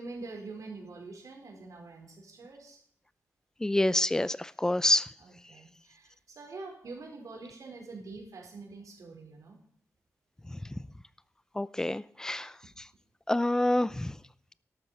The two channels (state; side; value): normal; both; correlation 0.85